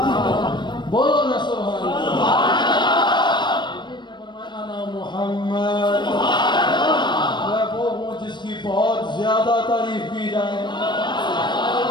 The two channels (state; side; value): late; right; 0.22 ms